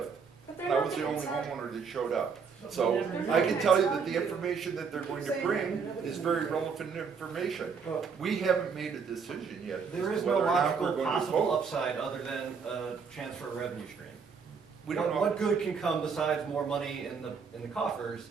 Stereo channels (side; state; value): left; quieter; 5.8 dB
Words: But they're And I not was the gonna only tell- homeowner that showed up. So I can tell you that the information that they're going to bring is very relevant information. Well, We haven't made a decision yet as there to is no whether or not we're logical going to possible vote. upside other than a chance for a revenue stream. We don't know. What good can come besides more money in the coffers